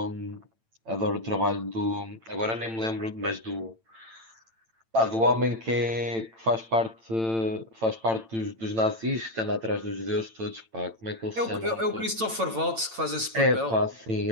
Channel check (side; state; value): left; late; 8.9 ms